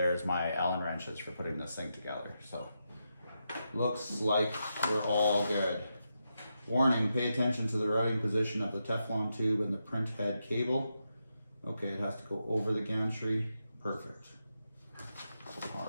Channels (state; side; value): inverted; both; correlation -0.85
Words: my Allen wrenches for putting this thing together. So, looks like we're all good. Warning, pay attention to the routing position of the Teflon tube and the print head cable. Okay, it has to go over the gantry. Perfect.